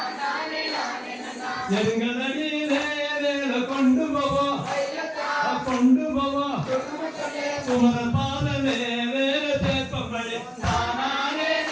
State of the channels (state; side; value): identical; both; correlation 1.00